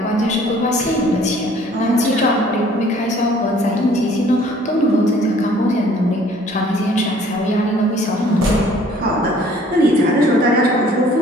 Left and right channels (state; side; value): normal; both; correlation 0.56